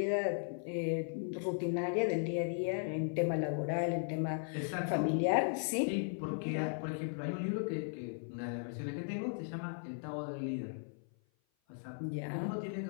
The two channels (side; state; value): right; silent; 53 dB below the other